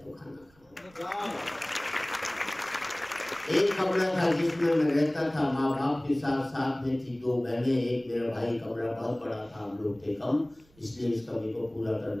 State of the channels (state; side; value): noise; right; rumble, 30 dB below the sound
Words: खाना खाऊं। एक कमरा था जिसमें मैं रहता था माँ बाप के साथ। साथ में थी 2 बहनें, एक मेरा भाई। कमरा बहुत बड़ा था, हम लोग थे कम, इसलिए इस कमी को पूरा